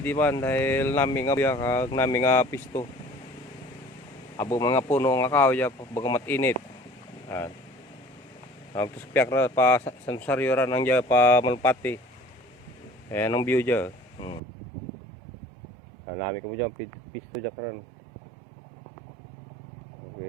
man dahil namin nga biya kag namin nga pisto. Abo mga puno nga kahoy dyan, baga matinit. Yan. Tapos piyak na pa sa saryoran nang dyan pa malpati. Ayan ang view dyan. Namin ka mo dyan, pisto dyan karan.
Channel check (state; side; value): drops out; left; at 14.4 s